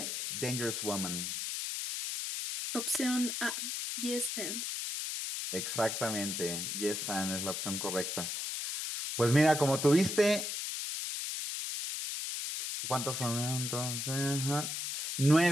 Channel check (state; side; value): noise; left; hiss, 3 dB below the sound